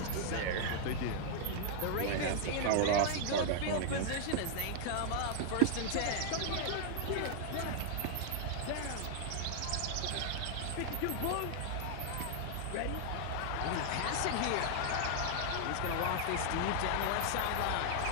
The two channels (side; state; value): both; different; correlation 0.00